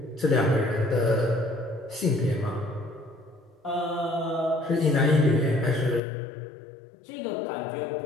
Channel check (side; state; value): right; drops out; at 6.0 s